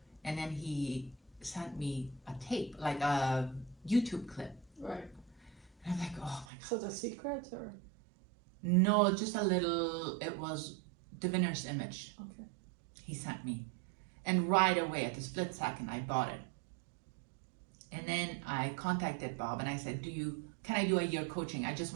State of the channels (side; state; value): left; drops out; at 6.5 s